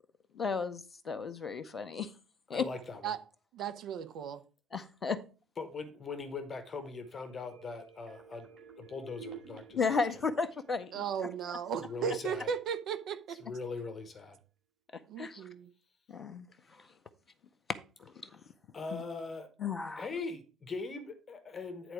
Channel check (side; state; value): both; normal; correlation 0.56